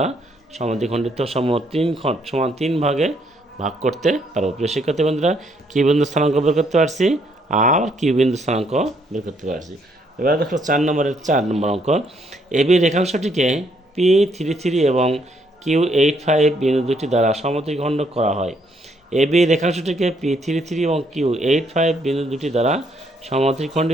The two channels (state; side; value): normal; both; correlation 0.70